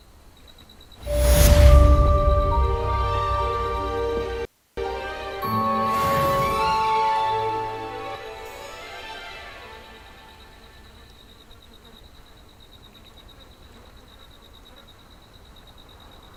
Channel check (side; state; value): both; identical; correlation 1.00